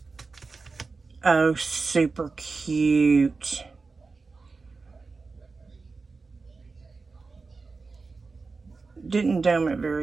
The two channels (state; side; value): quieter; left; 4.2 dB